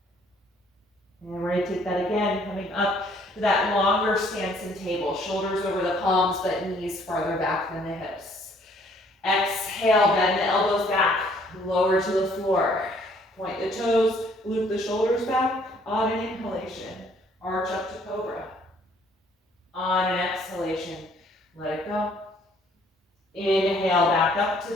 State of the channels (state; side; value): normal; both; correlation 0.62